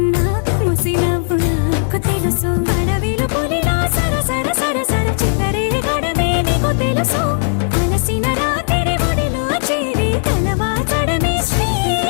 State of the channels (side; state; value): right; silent; digital silence